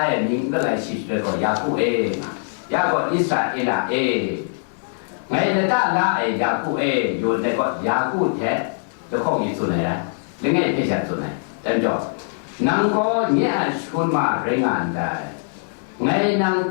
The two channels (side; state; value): right; silent; 63 dB below the other